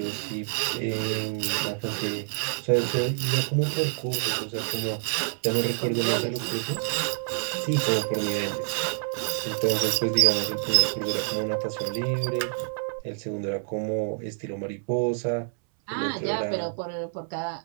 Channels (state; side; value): silent; left; 59 dB below the other